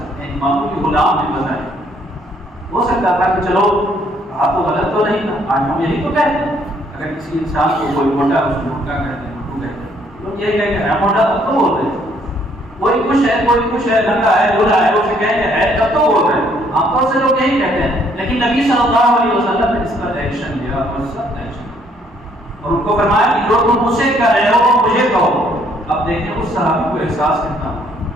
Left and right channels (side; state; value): both; normal; correlation 0.66